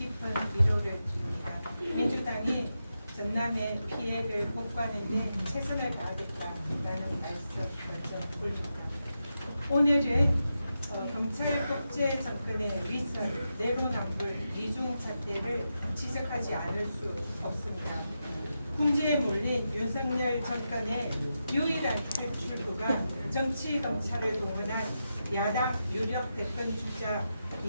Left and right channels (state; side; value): inverted; both; correlation -0.88